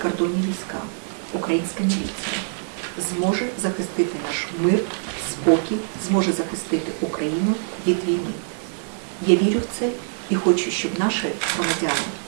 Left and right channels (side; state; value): left; silent; digital silence